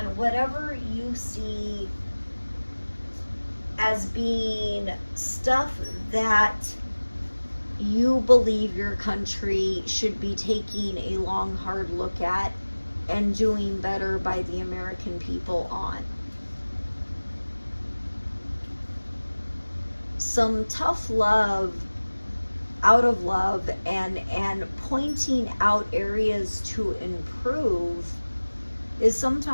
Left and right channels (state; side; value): inverted; both; correlation -1.00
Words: whatever you see as being stuff that you believe your country should be taking a long, hard look at and doing better by the American people on. Some tough love, out of love, and pointing out areas to improve is